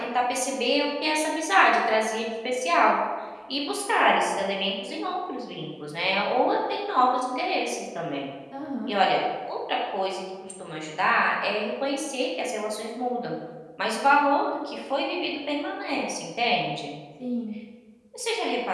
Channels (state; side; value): identical; both; correlation 1.00